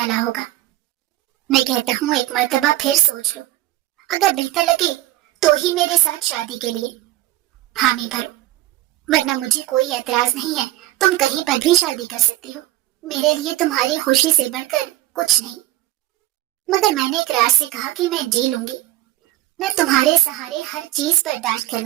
होगा। मैं कहता हूँ एक मर्तबा फिर सोच लो, अगर बेहतर लगे तो ही मेरे साथ शादी के लिए हामी भरो, वरना मुझे कोई एतराज नहीं है। तुम कहीं पर भी शादी कर सकती हो, मेरे लिए तुम्हारी खुशी से बढ़कर कुछ नहीं। मगर मैंने इकरार से कहा कि मैं जी लूंगी, मैं तुम्हारे सहारे हर चीज बर्दाश्त कर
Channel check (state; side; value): quieter; left; 16.0 dB